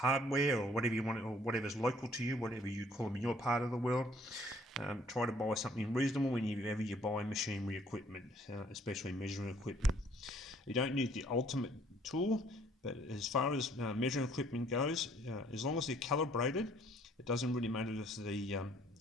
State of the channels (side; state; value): both; normal; correlation 0.61